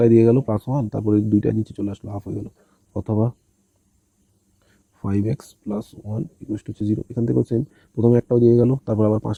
দিয়ে গেল প্লাস 1, তারপরে দুইটা নিচে চলে আসলো, হাফ হয়ে গেল। অথবা 5x প্লাস 1 ইকুয়াল টু 0। এখান থেকেও সেম, প্রথমে একটাও দিয়ে গেল, তারপর আবার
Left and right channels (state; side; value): identical; both; correlation 1.00